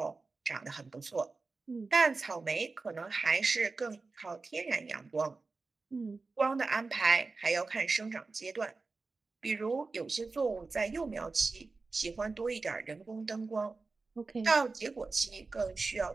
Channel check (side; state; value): left; quieter; 3.9 dB